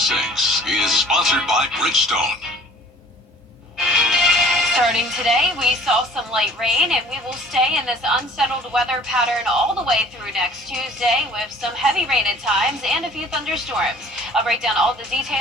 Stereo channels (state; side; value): normal; both; correlation 0.50